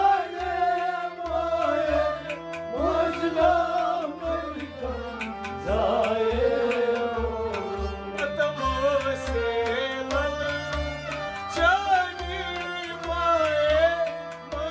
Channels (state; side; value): identical; both; correlation 1.00